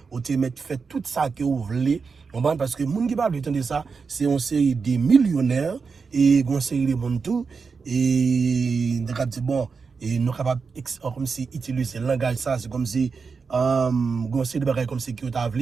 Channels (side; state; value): left; quieter; 5.1 dB